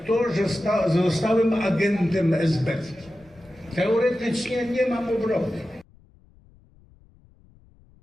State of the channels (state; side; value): noise; left; rumble, 29 dB below the sound